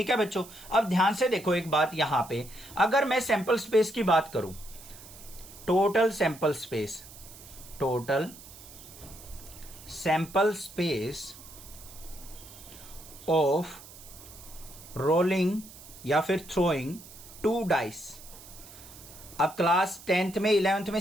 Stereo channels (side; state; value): right; noise; hiss, 18 dB below the sound